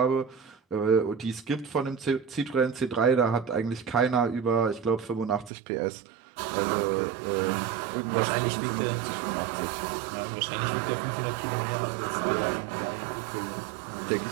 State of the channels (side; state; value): left; drops out; at 5.5 s